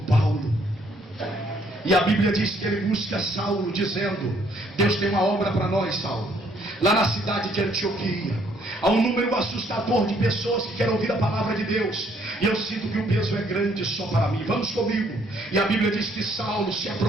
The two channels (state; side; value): normal; both; correlation 0.66